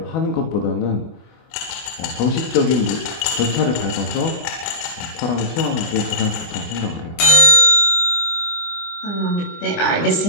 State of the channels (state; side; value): late; right; 24 ms